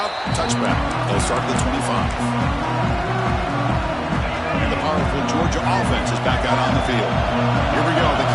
Touchback. They'll start at the 25. And the powerful Georgia offense is back out on the field. Here we go. The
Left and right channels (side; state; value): both; identical; correlation 1.00